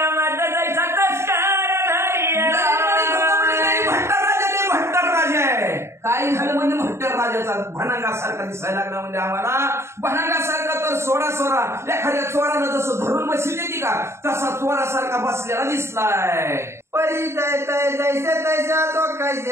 भनांगासारखा दिसायला लागला म्हणजे आम्हाला भनांगासारखा तर सोडा एखाद्या चोरानं जसं धरून बसली देते का तसा चोरासारखा बसलेला दिसलाय. परिचय तय जैसे तैसा तो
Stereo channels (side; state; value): left; late; 0.13 ms